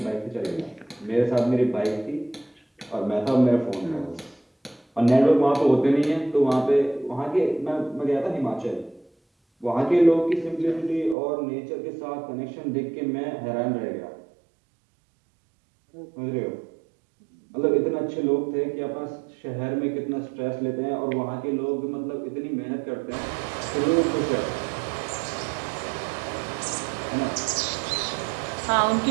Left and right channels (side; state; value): left; drops out; at 11.2 s